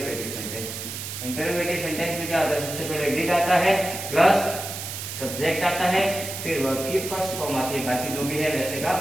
सेंटेंस। इंटरोगेटिव सेंटेंस में क्या होता है, सबसे पहले डिड आता है प्लस सब्जेक्ट आता है, फिर वर्ब की फर्स्ट फॉर्म आती है, बाकी जो भी है वैसे का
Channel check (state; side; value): noise; right; hiss, 7 dB below the sound